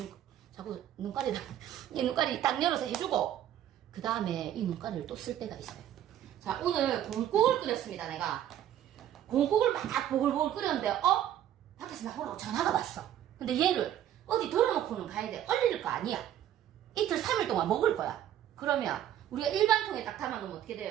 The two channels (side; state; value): left; quieter; 11.3 dB